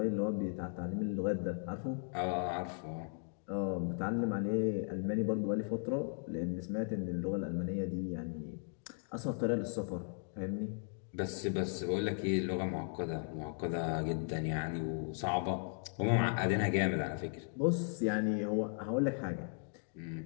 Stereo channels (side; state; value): right; silent; 53 dB below the other